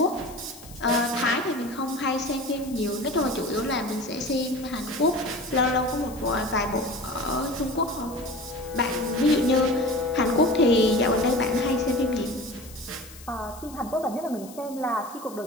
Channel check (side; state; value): left; noise; hiss, 19 dB below the sound